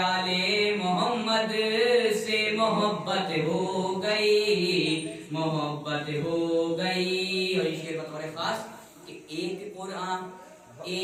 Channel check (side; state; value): both; identical; correlation 1.00